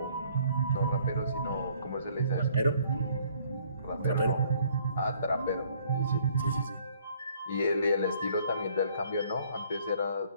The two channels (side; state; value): both; inverted; correlation -0.61